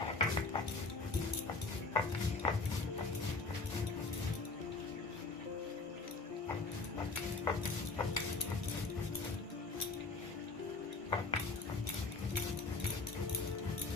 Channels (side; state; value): right; quieter; 3.8 dB